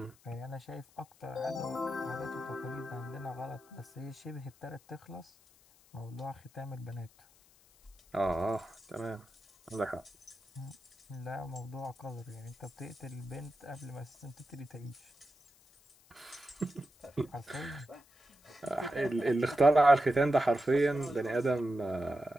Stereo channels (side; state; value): left; noise; hiss, 28 dB below the sound